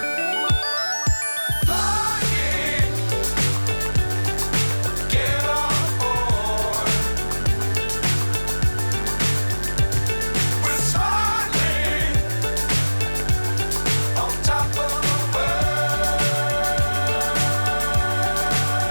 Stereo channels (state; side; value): inverted; both; correlation -1.00